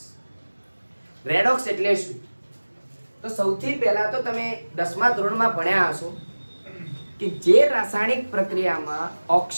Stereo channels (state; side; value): inverted; both; correlation -1.00